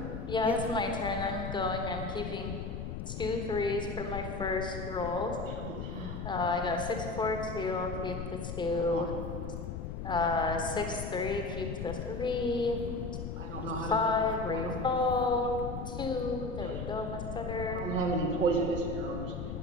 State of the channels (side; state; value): left; noise; rumble, 5 dB below the sound